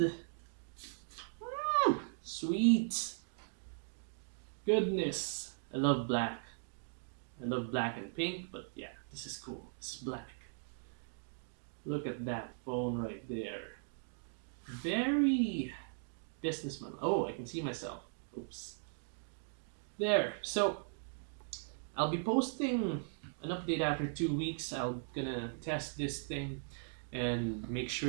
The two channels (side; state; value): left; silent; digital silence